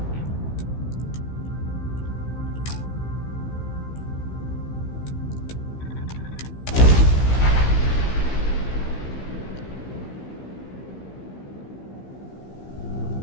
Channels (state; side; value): late; right; 15 ms